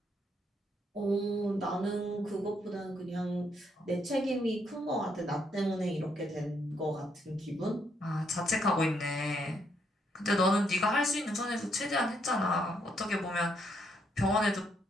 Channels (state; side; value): normal; both; correlation 0.74